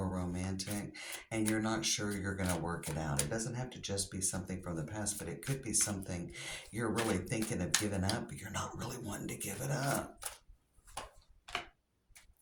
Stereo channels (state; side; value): identical; both; correlation 1.00